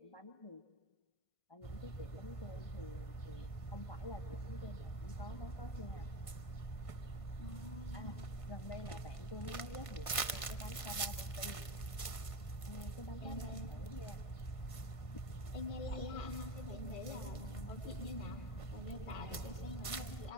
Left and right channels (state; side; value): late; right; 1.5 ms